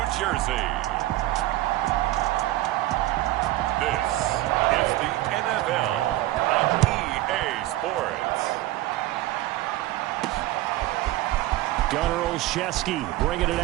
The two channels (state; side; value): quieter; left; 16.3 dB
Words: Jersey, this is the NFL on EA Sports. Gunnar Olszewski bringing it